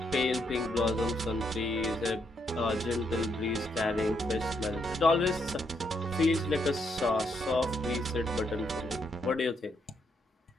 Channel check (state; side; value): normal; both; correlation 0.77